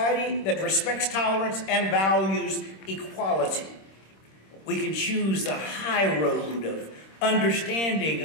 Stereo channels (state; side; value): late; right; 26 ms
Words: that respects tolerance and values equality. We can choose the high road of